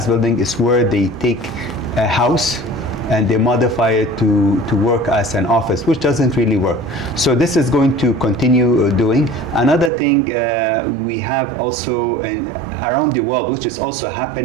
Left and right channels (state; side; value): drops out; left; at 9.9 s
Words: building is where they take a house and they modify it to work as an office, which doesn't really work. So this is going to continue doing. Another thing we have also around the world, which is also